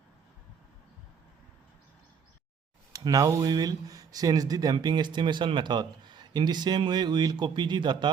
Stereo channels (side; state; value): left; quieter; 6.7 dB